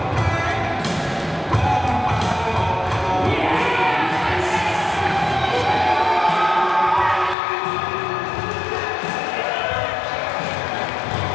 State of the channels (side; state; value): right; drops out; at 7.4 s